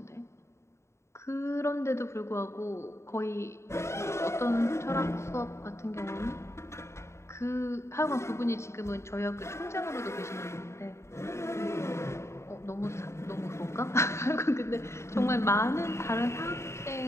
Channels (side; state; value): right; late; 0.13 ms